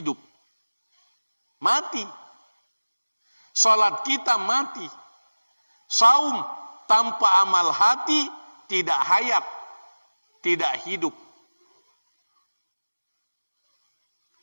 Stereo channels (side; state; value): both; inverted; correlation -1.00